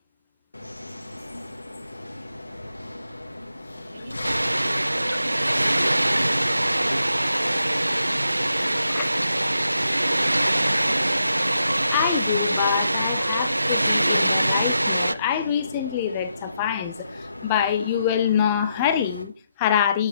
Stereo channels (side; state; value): both; inverted; correlation -0.82